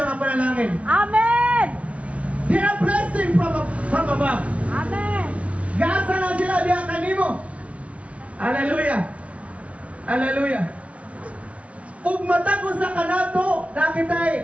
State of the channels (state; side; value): late; left; 0.064 ms